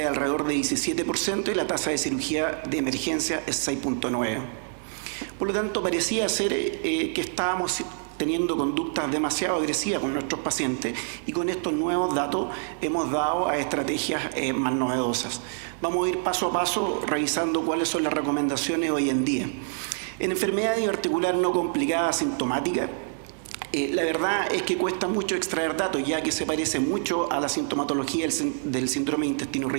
es alrededor de 17% y la tasa de cirugía de emergencia es 6.9%. Por lo tanto, parecía ser que estábamos teniendo conductas demasiado agresivas con nuestros pacientes, y con estos nuevos datos hemos dado a estrategias más novedosas. Vamos a ir paso a paso revisando cuáles son las recomendaciones hoy en día. En enfermedad diverticular no complicada asintomática, la verdad es que cuesta mucho extraer datos, ya que se parece mucho a la sintomatología del síndrome de intestino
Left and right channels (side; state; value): left; silent; digital silence